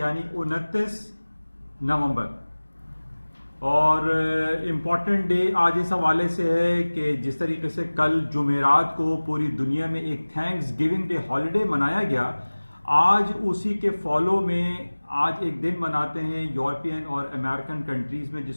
29 नवंबर। और इम्पॉर्टेंट डे आज इस हवाले से है कि जिस तरीके से कल जुमेरात को पूरी दुनिया में एक थैंक्स गिविंग डे हॉलीडे मनाया गया, आज उसी के फॉलो में आज एक दिन मनाते हैं यूरोपियन और अमेरिकन कंट्रीज में,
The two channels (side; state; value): both; inverted; correlation -1.00